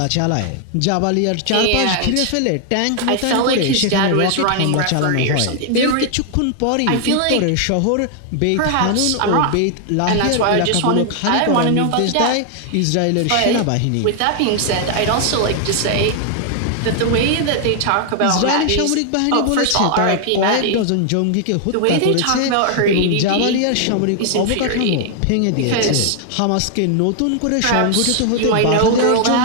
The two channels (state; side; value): different; both; correlation 0.00